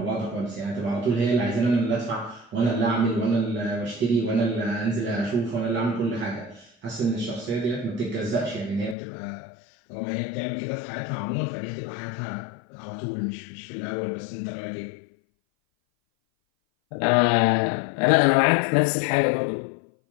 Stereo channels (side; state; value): right; drops out; at 9.0 s